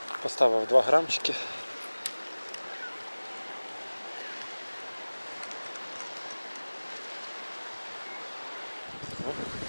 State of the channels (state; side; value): inverted; both; correlation -1.00